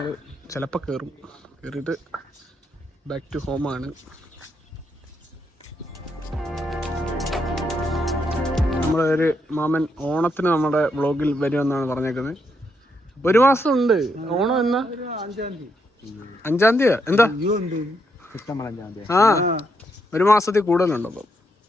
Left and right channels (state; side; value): normal; both; correlation 0.78